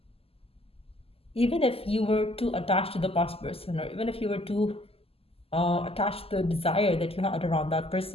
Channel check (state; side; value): late; right; 0.28 ms